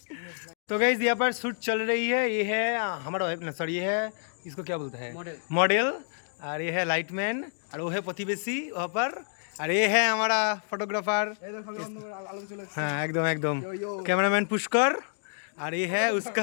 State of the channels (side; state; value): right; silent; digital silence